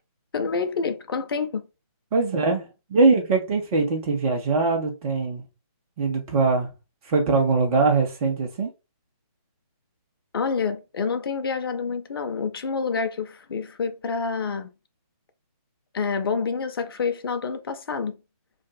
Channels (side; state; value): both; inverted; correlation -0.47